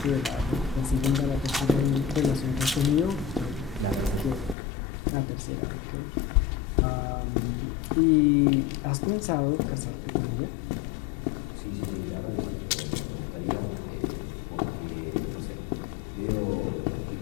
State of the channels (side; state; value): right; drops out; at 4.5 s